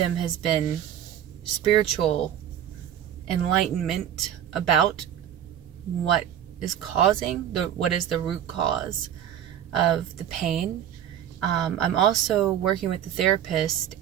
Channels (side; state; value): left; quieter; 10.2 dB